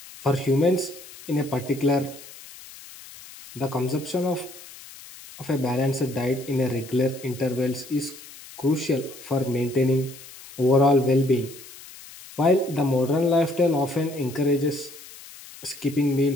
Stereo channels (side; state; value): left; noise; hiss, 18 dB below the sound